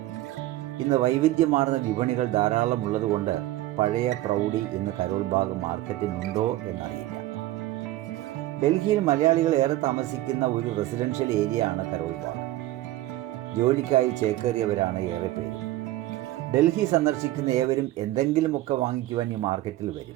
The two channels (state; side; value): quieter; left; 15.9 dB